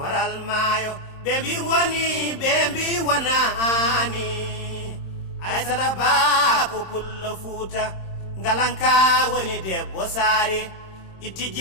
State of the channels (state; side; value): late; right; 26 ms